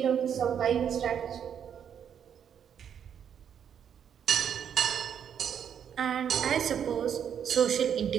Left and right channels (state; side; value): quieter; left; 8.4 dB